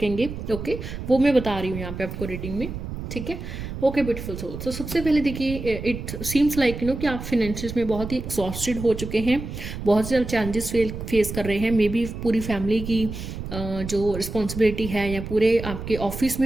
ओके, वो मैं बता रही हूँ यहाँ पे आपको रीडिंग में, ठीक है। Okay beautiful soul. तो सबसे पहले देखिए, इट सीम्स लाइक कि आप फिनेंशियस में बहुत ही एग्जॉस्टेड हो चुके हैं, बहुत ज़्यादा चैलेंजेस फेस कर रहे हैं। मे बी पूरी फैमिली की जो रिस्पॉन्सिबिलिटी है या पूरे आपके ऑफिस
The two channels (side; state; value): right; noise; rumble, 8 dB below the sound